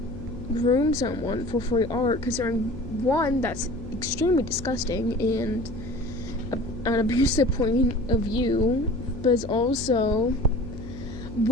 groom someone for free art, considering one, that's extremely disgusting and an abusive point of view, but it's also,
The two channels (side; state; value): left; noise; hum, 12 dB below the sound